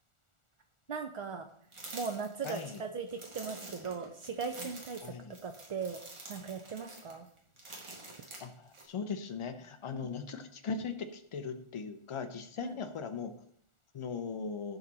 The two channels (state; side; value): late; right; 1.4 ms